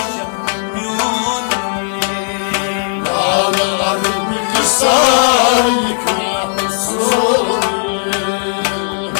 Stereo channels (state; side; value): silent; right; digital silence